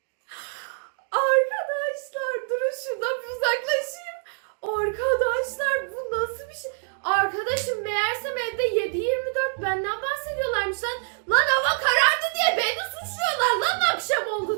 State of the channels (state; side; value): silent; left; digital silence